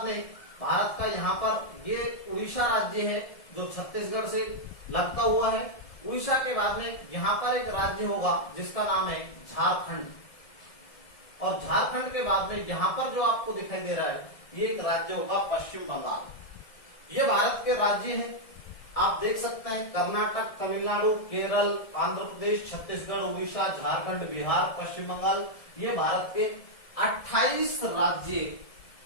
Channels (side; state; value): right; late; 1.7 ms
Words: में भारत का यहां पर ये उड़ीसा राज्य है जो छत्तीसगढ़ से लगता हुआ है। उड़ीसा के बाद में यहां पर एक राज्य होगा जिसका नाम है झारखंड, और झारखंड के बाद में यहां पर जो आपको दिखाई दे रहा है ये एक राज्य होगा पश्चिम बंगाल। ये भारत के राज्य हैं, आप देख सकते हैं कर्नाटक, तमिलनाडु, केरल, आंध्र प्रदेश, छत्तीसगढ़, उड़ीसा, झारखंड, बिहार, पश्चिम बंगाल। ये भारत के 28